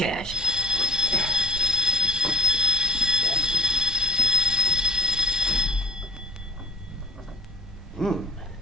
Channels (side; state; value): both; normal; correlation 0.39